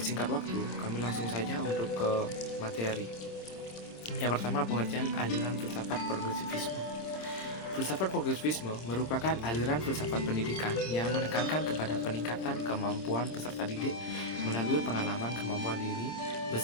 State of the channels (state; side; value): late; right; 26 ms